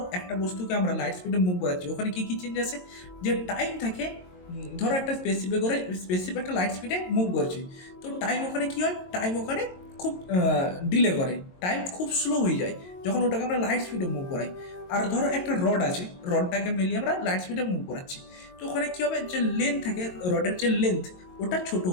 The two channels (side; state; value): right; late; 22 ms